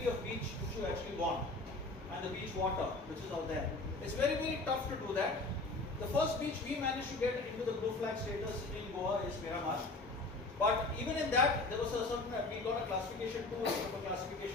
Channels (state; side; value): quieter; right; 3.2 dB